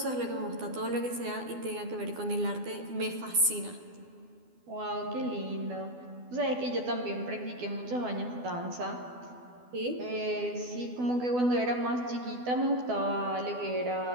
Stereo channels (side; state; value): left; late; 12 ms